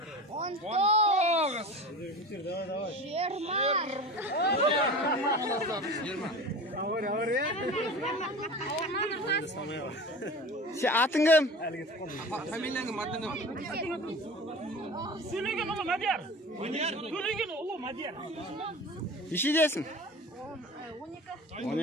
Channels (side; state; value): both; normal; correlation 0.35